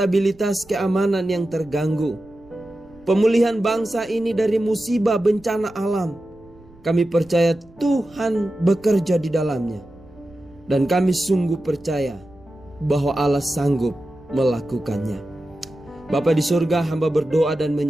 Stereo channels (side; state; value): right; noise; rumble, 26 dB below the sound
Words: keamanan yang terganggu. Pemulihan bangsa ini dari musibah bencana alam. Kami percaya Tuhan bekerja di dalamnya. Dan kami sungguh percaya bahwa Allah sanggup melakukannya. Bapa di surga, hamba berdoa dan